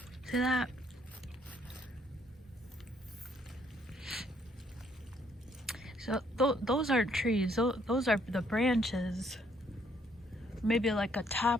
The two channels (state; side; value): normal; both; correlation 0.68